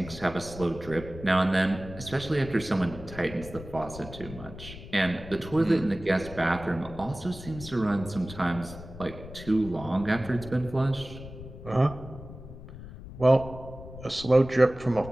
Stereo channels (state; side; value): noise; left; rumble, 14 dB below the sound